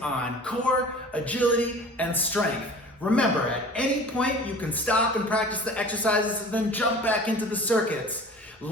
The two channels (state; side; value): normal; both; correlation 0.42